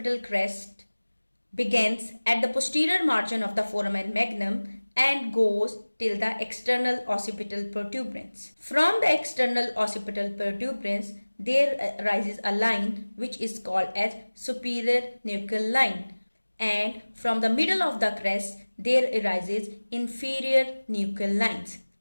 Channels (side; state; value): both; inverted; correlation -1.00